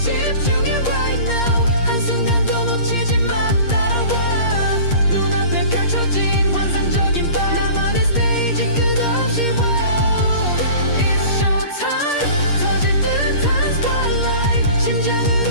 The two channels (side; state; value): right; late; 8.6 ms